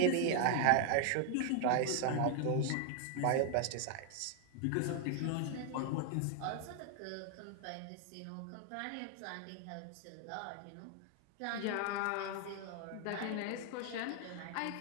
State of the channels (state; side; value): different; both; correlation 0.00